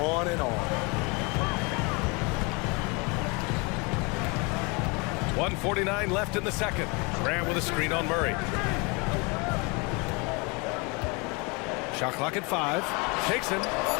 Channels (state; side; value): quieter; right; 29.5 dB